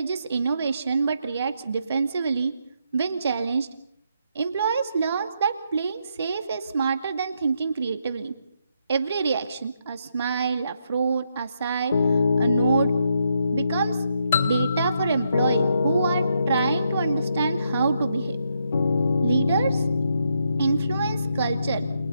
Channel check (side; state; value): both; inverted; correlation -0.79